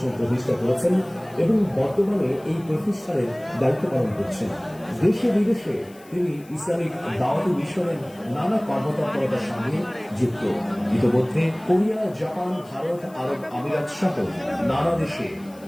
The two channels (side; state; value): left; noise; hiss, 26 dB below the sound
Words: প্রতিষ্ঠা করেছেন এবং বর্তমানে এই প্রতিষ্ঠানের দায়িত্ব পালন করছেন। দেশে বিদেশে তিনি ইসলামিক দাওয়াতি মিশনের নানা কর্মতৎপরতার সঙ্গে যুক্ত। ইতিমধ্যে কোরিয়া, জাপান, ভারত, আরব আমিরাত সহ নানা দেশে